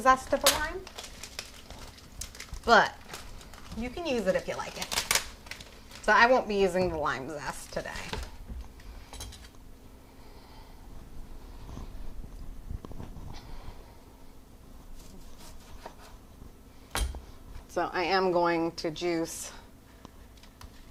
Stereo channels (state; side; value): identical; both; correlation 1.00